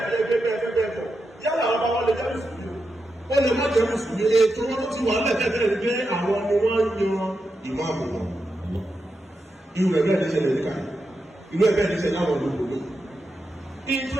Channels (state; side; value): normal; both; correlation 0.87